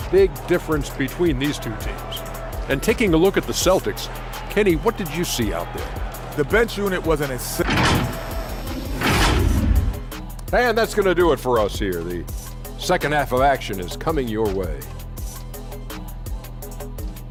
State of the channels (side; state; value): both; identical; correlation 1.00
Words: big difference between these two teams. And taking a look at the Celtics, Kenny, what did you see out there? The bench unit wasn't as... And that's going to do it for us here. The second half of action is coming your way.